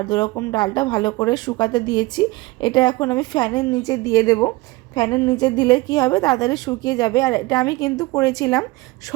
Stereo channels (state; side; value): quieter; left; 21.5 dB